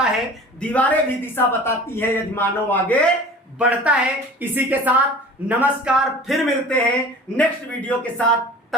है, दीवारें भी दिशा बताती है, यजमानों आगे बढ़ता है। इसी के साथ नमस्कार, फिर मिलते हैं नेक्स्ट वीडियो के साथ।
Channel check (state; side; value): normal; both; correlation 0.42